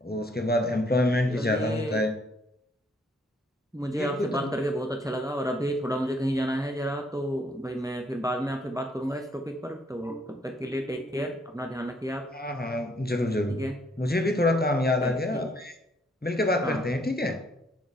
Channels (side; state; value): both; normal; correlation 0.67